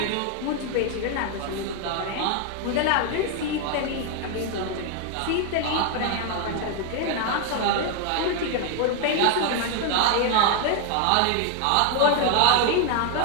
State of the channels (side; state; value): both; different; correlation 0.01